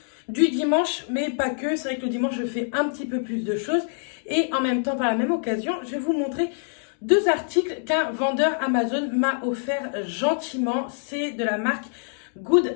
du dimanche, mais pas que. C'est vrai que le dimanche, je fais un petit peu plus de choses et en même temps, par la même occasion, je vais vous montrer deux articles qu'un vendeur Amazon m'a offert gentiment. C'est de la marque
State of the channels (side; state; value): right; silent; 62 dB below the other